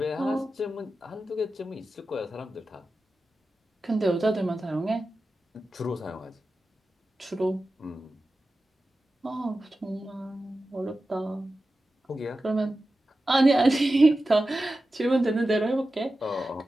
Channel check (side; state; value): both; normal; correlation 0.93